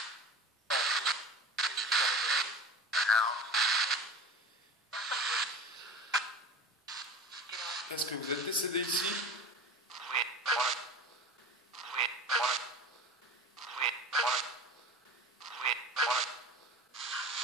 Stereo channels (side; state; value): both; normal; correlation 0.36